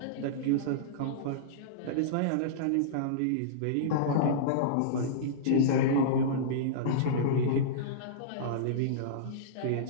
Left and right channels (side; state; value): both; different; correlation -0.03